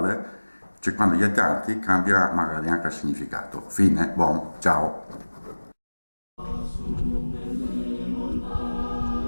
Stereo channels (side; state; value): both; inverted; correlation -1.00